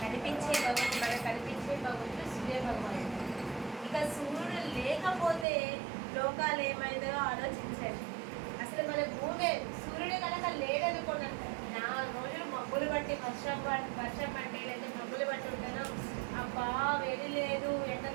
కనిపించే భగవంతుడు, మనకు కనిపించే భగవంతుడు సూర్య భగవానుడు. ఇక సూర్యుడు లేకపోతే లోకాలు ఏమైందో ఆలోచించండి. అసలు మన భూమి సూర్యుడు కనుక లేదనుకోండి, 4 రోజులు మబ్బులు బట్టి వర్షం పట్టే లేదా మబ్బులు బట్టి ఉంటాను, అబ్బా వేడి లేదు, ఎండ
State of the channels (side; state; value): left; drops out; at 5.5 s